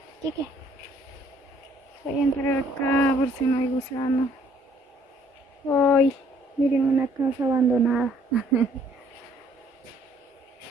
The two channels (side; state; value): both; normal; correlation 0.62